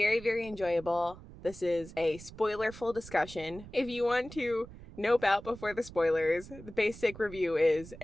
very enjoyable. This is a spoiler-full discussion. If you want to nope out before the spoilers, the basic review is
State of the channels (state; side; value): noise; right; rumble, 16 dB below the sound